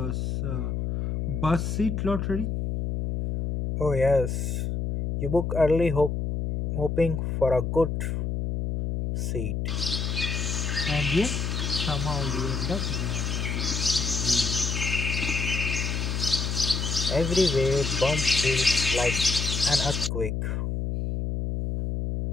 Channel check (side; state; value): left; noise; hum, 1 dB below the sound